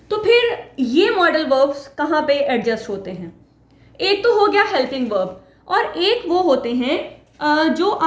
तो फिर ये मॉडल वर्ब्स कहाँ पे एडजस्ट होते हैं? एक तो हो गया हेल्पिंग वर्ब और एक वो होते हैं जो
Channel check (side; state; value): both; identical; correlation 1.00